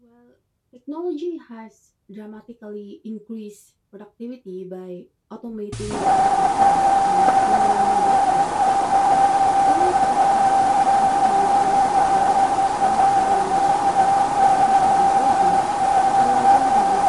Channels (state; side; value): identical; both; correlation 1.00